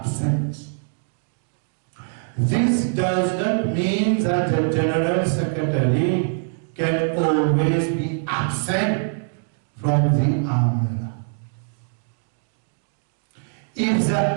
This does not mean that the General Secretary can always be absent from the Amla. If the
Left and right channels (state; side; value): silent; left; digital silence